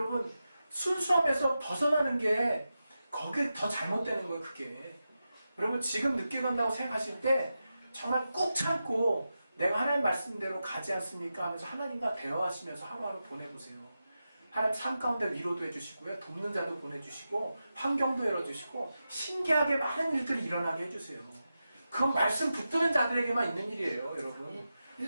순수함에서 벗어나는 게 거기에 더 잘못되는 거예요. 그게. 여러분 지금 늦게 간다고 생각하실 때 정말 꾹 참고 내가 하나님 말씀대로 가지 않습니까? 하면서 하나님과 대화하시면서 하루하루 보내보세요. 하나님 삶 가운데 위로도 해주시고요. 돕는 자도 보내주시고 환경도 열어주시고 신기하게 많은 일들이 일어나게 해주세요. 그건 말씀 붙드는 자들에게만 있는 일이에요. 여러분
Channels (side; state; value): both; inverted; correlation -0.91